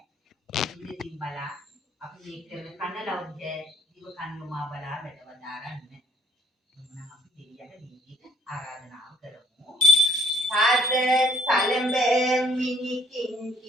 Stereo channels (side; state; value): both; normal; correlation 0.65